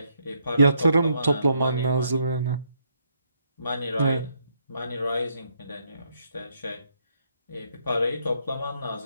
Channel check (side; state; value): both; inverted; correlation -0.74